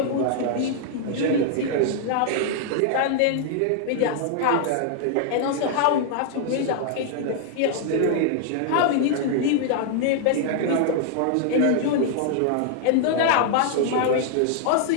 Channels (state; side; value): different; both; correlation -0.01